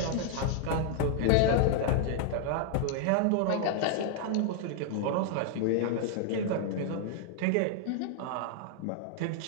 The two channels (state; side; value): different; both; correlation 0.00